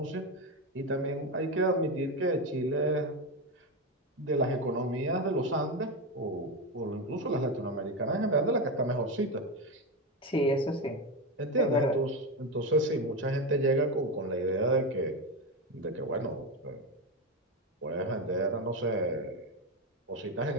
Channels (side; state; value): both; normal; correlation 0.14